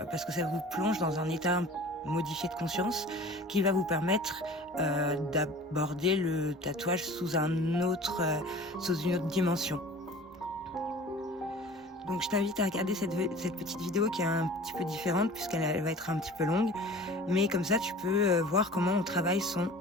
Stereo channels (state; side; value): normal; both; correlation 0.43